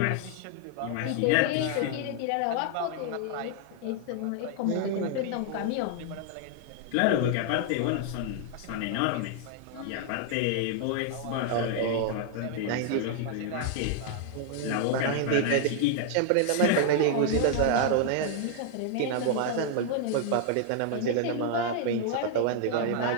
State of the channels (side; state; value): both; different; correlation 0.00